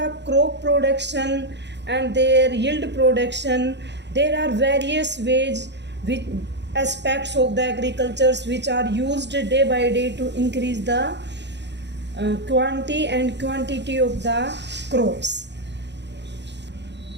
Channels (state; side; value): late; left; 0.51 ms